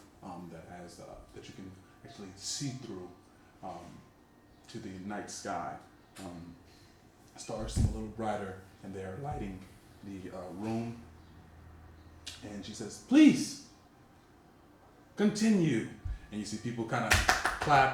that has that you can actually see through to the night sky. Stars seem a little brighter, and they're lighting the room. And she says, "Please continue." And you see people kind of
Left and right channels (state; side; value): identical; both; correlation 1.00